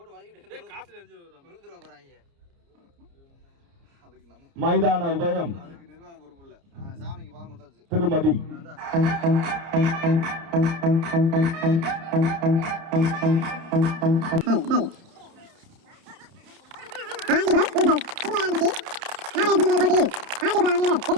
மைதான உதயம் திருமதி.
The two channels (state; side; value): late; left; 30 ms